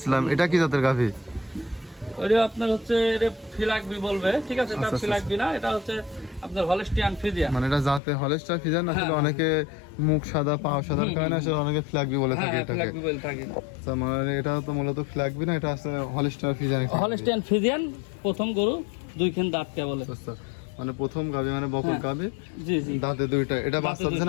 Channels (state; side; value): drops out; right; at 8.0 s